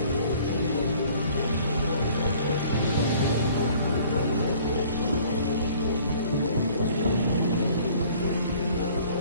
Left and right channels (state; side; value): inverted; both; correlation -0.54